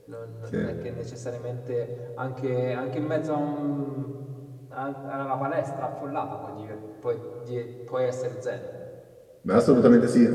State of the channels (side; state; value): both; identical; correlation 1.00